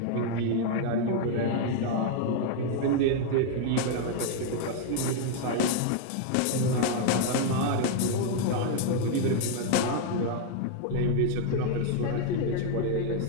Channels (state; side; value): different; both; correlation 0.00